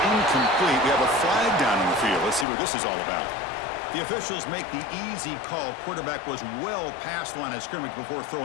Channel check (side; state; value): right; drops out; at 2.5 s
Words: we have a flag down in the field. Let's see what this is all about. The officials make the easy call. Quarterback was well past the line of scrimmage before